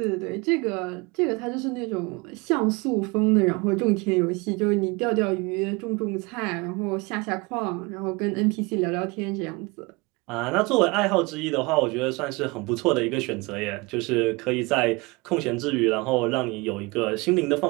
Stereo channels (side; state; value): left; quieter; 26.0 dB